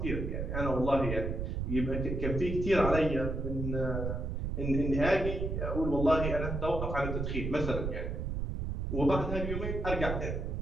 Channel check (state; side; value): noise; right; rumble, 2 dB below the sound